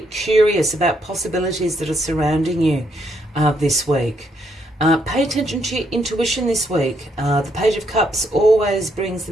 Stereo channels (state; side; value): normal; both; correlation 0.74